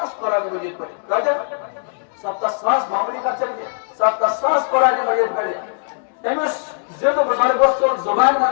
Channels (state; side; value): silent; right; digital silence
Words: قرآن مجید پڑھت کتے 70,000 معمولی کا چلیے 70,000 قرآن مجید پڑھت امس زید بزرگ وصل زبان